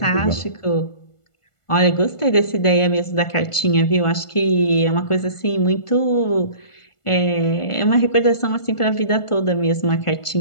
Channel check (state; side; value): late; right; 1.4 ms